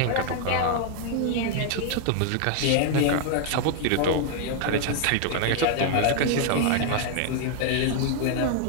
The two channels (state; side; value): different; both; correlation 0.00